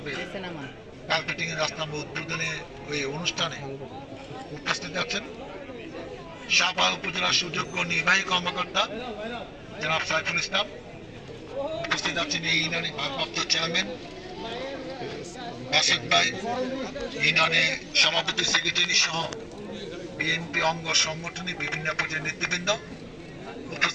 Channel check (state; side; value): identical; both; correlation 1.00